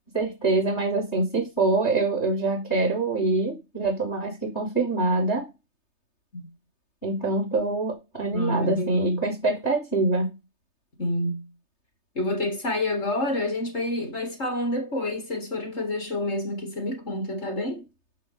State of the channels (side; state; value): right; late; 3.3 ms